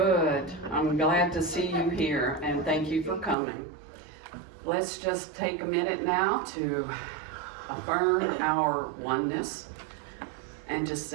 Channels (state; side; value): drops out; left; at 3.4 s